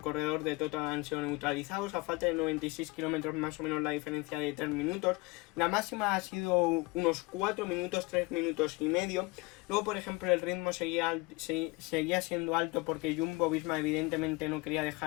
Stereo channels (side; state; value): right; quieter; 24.8 dB